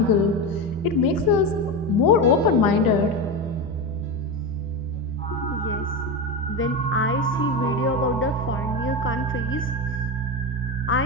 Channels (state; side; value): normal; both; correlation 0.18